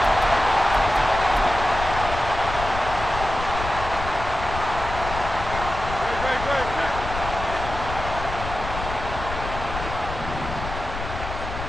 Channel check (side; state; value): left; noise; rumble, 7 dB below the sound